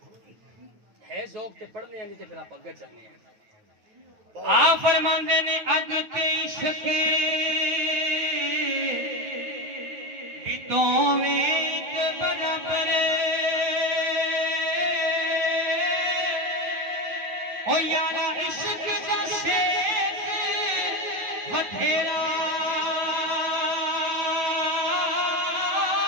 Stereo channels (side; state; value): left; late; 9.3 ms